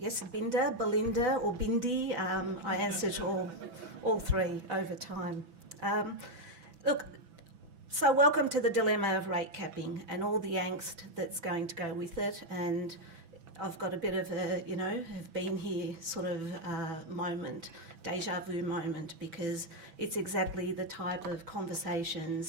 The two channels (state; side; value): late; left; 6.0 ms